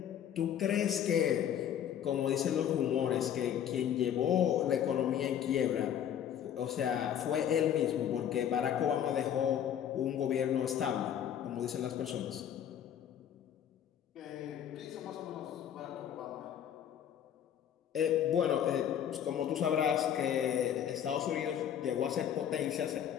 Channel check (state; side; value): quieter; right; 9.6 dB